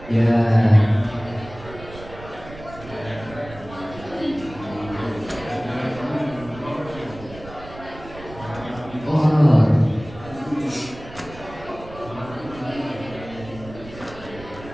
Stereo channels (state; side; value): noise; right; rumble, 16 dB below the sound